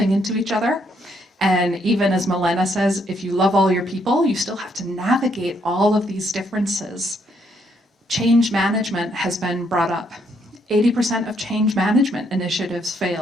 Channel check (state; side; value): normal; both; correlation 0.72